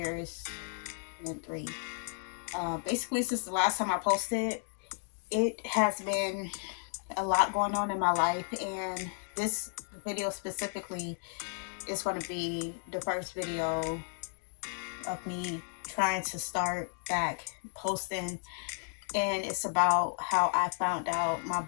and then three. Basically, since the last time I posted, it has been a lot going on in my life, and this video specifically is going to be the first video of me trying to start back posting. And it's about how I found out my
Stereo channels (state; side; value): silent; right; 56 dB below the other